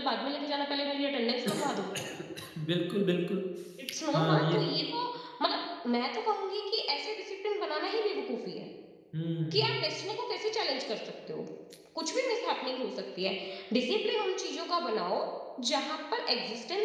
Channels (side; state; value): both; identical; correlation 1.00